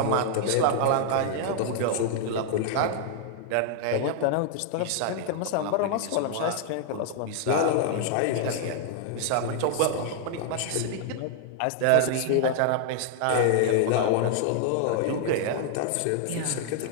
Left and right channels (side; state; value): both; different; correlation -0.01